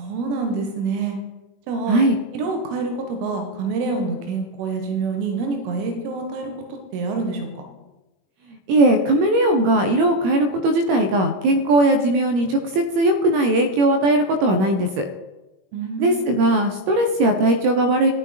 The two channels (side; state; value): left; late; 21 ms